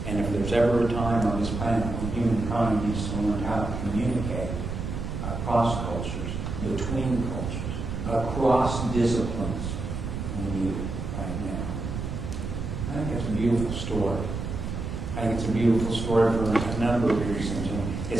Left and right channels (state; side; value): noise; right; rumble, 5 dB below the sound